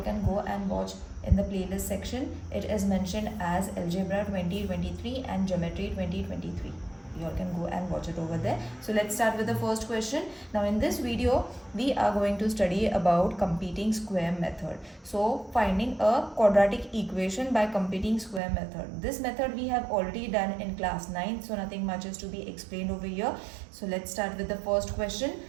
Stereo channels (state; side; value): drops out; left; at 18.4 s